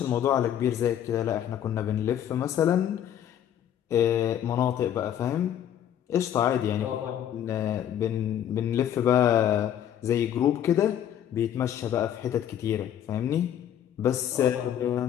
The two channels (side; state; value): right; quieter; 10.2 dB